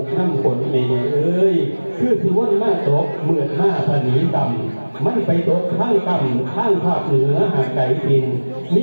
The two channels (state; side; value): inverted; both; correlation -1.00